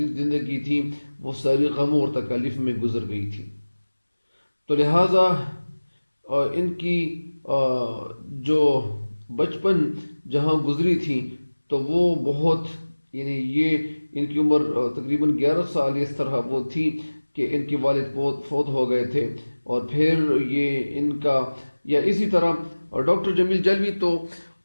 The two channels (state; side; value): inverted; both; correlation -1.00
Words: تھی وہ ساری غموں اور تکالیف میں گزر گئی تھی. تو لہٰذا ان کی جو بچپن جہاں گزری تھی تو وہ بہت یعنی یہ ان کی عمر تقریباً 11 سال اس طرح وہ تھی کہ ان کے والد فوت ہو گئے تھے. اور پھر یہ ان کا یا اسی طرح ڈاکٹر جمیل جلوی تو